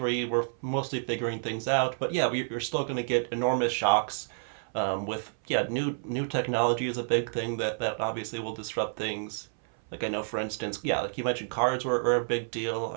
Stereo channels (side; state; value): left; silent; 58 dB below the other